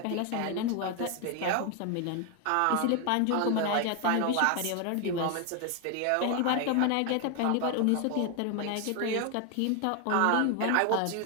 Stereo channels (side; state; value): both; different; correlation 0.01